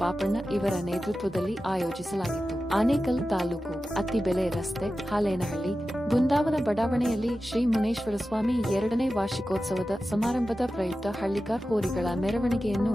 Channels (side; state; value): both; normal; correlation 0.93